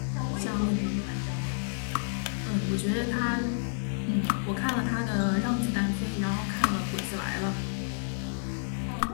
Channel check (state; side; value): silent; right; digital silence